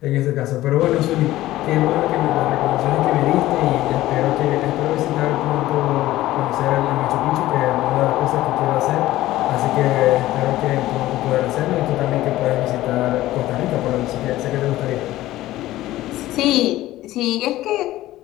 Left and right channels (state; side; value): quieter; right; 15.7 dB